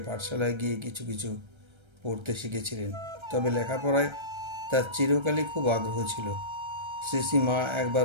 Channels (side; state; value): left; late; 1.3 ms